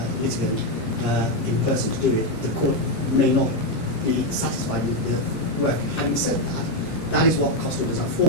litigant in person to do it, the court may not be satisfied with the work. Having said that, that is what cost orders are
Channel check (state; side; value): late; right; 16 ms